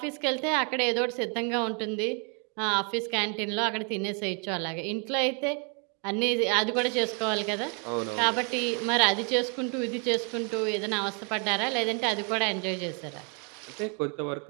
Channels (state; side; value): quieter; left; 37.0 dB